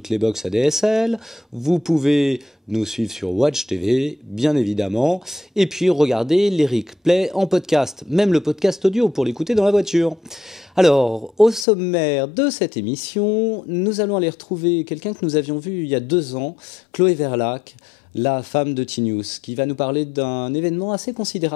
les box ADSL, vous pouvez nous suivre sur Watch TV, bien évidemment, et puis regarder les replays en podcast, même le podcast audio pour l'écouter dans la voiture. Alors, au sommaire de cette émission, nous allons aller retrouver quelqu'un que nous avions vu il y a 2 ans, Chloé Verlaque, la femme de T-News, qui va nous parler d'un événement assez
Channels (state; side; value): drops out; right; at 11.7 s